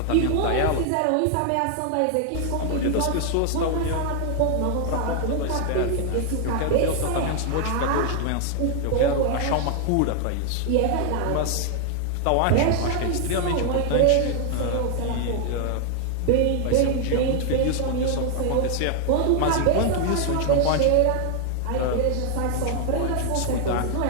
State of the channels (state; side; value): different; both; correlation 0.00